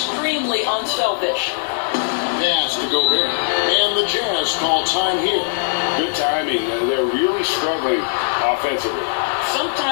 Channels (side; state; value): right; silent; digital silence